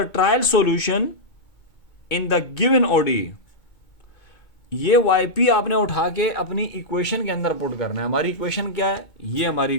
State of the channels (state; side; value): late; right; 2.2 ms